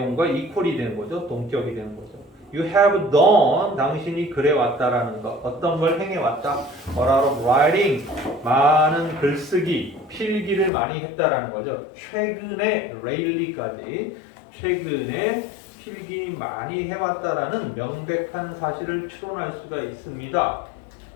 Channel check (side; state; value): right; drops out; at 10.7 s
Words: equal이 되는 거죠. 동격이 되는 거죠. You have done, 당신이 그래 왔다라는 것. 어떤 걸 행해 왔다. A lot of writing, 많은 글쓰기, 필기를 많이 했다라는 거죠. 최근에 lately까지 최근에 필기 많이 해왔다라는 명백한 사실을 추론할 수가 있습니다.